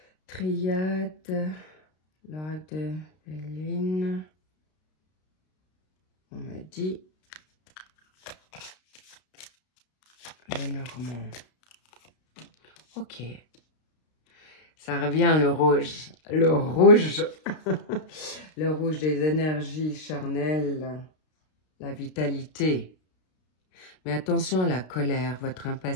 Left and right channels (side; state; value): right; late; 32 ms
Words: Triade, l'oracle de Béline. On me dit le Normand. Ok. Ça revient le rouge. Le rouge. Le rouge des énergies charnelles. La vitalité. Mais attention à la colère, votre